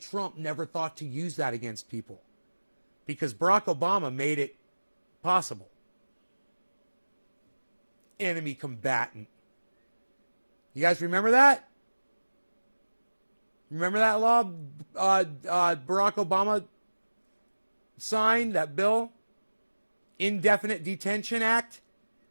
Trump never thought to use that against people because Barack Obama made it possible. Enemy combatant. You guys remember that? Remember that law Barack Obama signed, that bill? Indefinite Detention Act?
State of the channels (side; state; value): both; inverted; correlation -1.00